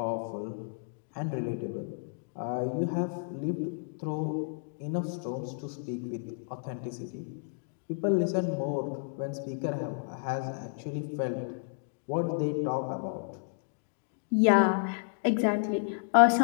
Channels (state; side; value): silent; right; digital silence